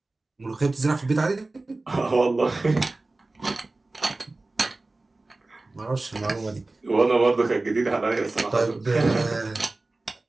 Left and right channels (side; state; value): left; quieter; 3.1 dB